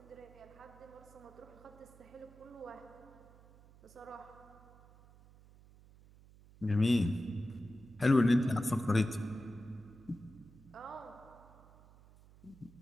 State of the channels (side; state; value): right; noise; hum, 23 dB below the sound